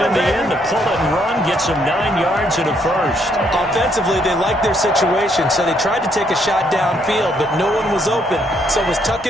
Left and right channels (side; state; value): both; normal; correlation 0.71